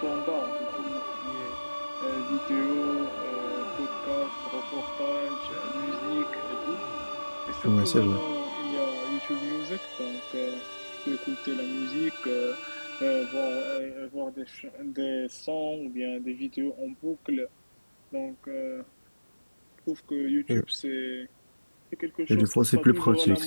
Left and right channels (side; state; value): both; inverted; correlation -1.00